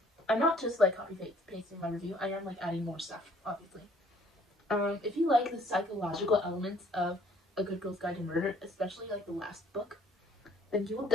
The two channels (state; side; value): normal; both; correlation 0.59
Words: I'm not just like copy-pasting my review, I am like adding more stuff, obviously. If you like the psychological elements of A Good Girl's Guide to Murder, especially like the last book, then you will